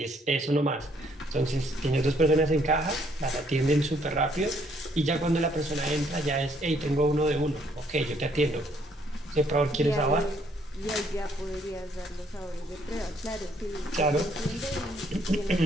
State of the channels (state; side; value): normal; both; correlation 0.67